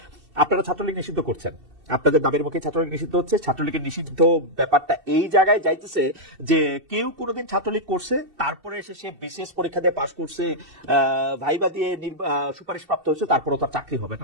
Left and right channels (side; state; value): left; late; 2.7 ms